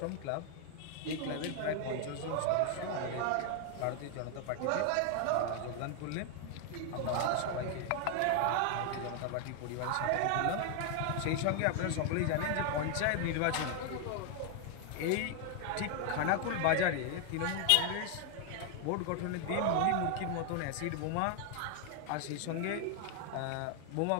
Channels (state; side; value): different; both; correlation 0.00